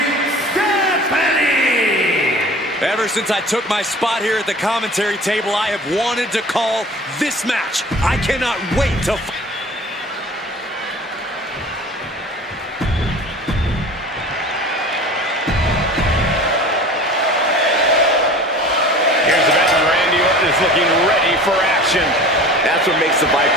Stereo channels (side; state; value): both; normal; correlation 0.41